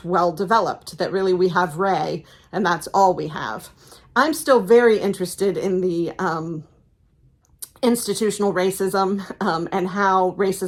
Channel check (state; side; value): identical; both; correlation 1.00